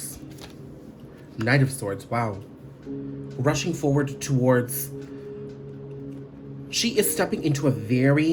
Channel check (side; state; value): both; identical; correlation 1.00